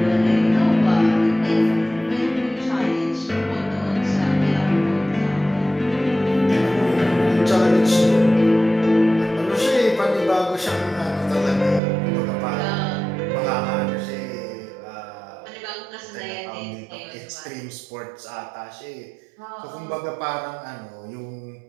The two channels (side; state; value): left; drops out; at 11.8 s